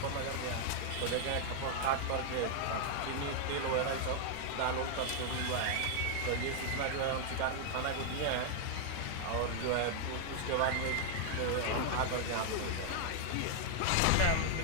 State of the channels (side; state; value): both; different; correlation -0.01